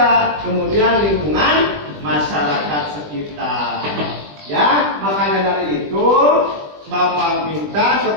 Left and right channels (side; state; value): left; late; 20 ms